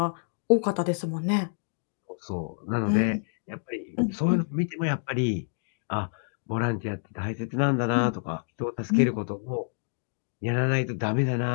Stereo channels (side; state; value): right; silent; digital silence